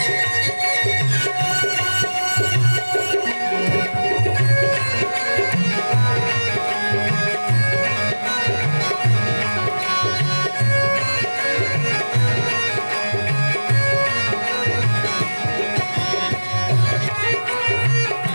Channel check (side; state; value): both; inverted; correlation -1.00